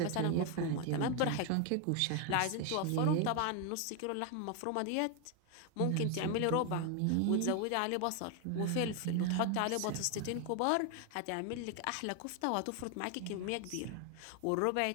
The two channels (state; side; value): different; both; correlation 0.01